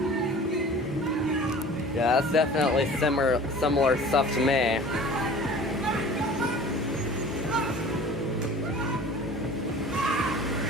Yeah, that's definitely similar stuff to me.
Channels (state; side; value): normal; both; correlation 0.43